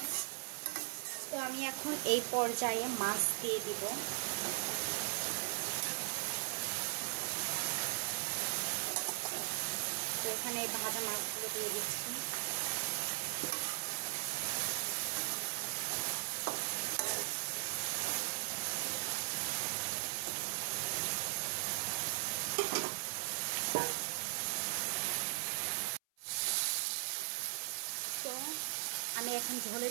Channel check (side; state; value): left; silent; 52 dB below the other